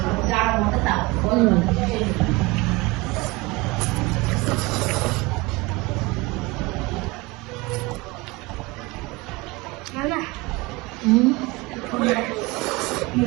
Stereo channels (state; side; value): quieter; left; 23.4 dB